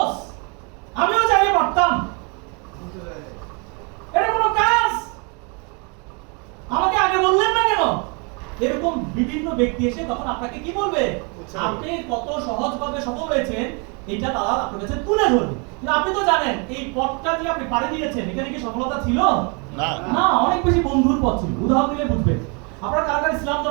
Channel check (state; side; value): quieter; left; 33.7 dB